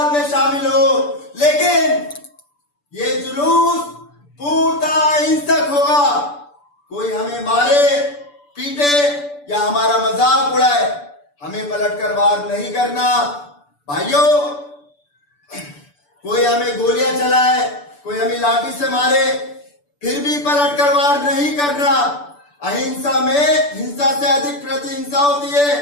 में शामिल हो, लेकिन ये जुलूस पूर्णतः अहिंसक होगा। कोई हमें मारे पीटे या हमारा मजाक उड़ाए, हमें पलटकर वार नहीं करना। भाइयों, कोई हमें गोलियां चलाए, कोई हमें लाठी से मारे, फिर भी पलट कर वार नहीं करना। अहिंसा में हिंसा से अधिक प्रतिहिंसा होती है।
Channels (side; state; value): right; late; 6.9 ms